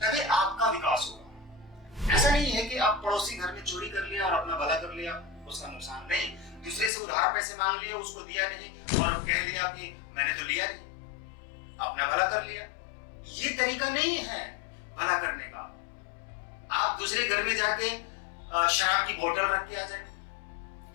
तभी आपका विकास होगा। ऐसा नहीं है कि आप पड़ोसी घर में चोरी कर लिया और अपना भला कर लिया, उसका नुकसान नहीं, दूसरे से उधार पैसे मांग लिया, उसको दिया नहीं और कह लिया कि मैंने तो लिया नहीं, अपना भला कर लिया। ये तरीका नहीं है भला करने का। आप दूसरे घर में जाके शराब की बोतल रख के आ जाए,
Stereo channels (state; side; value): drops out; right; at 6.9 s